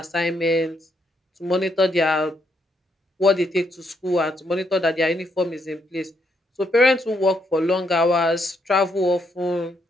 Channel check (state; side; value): normal; both; correlation 0.76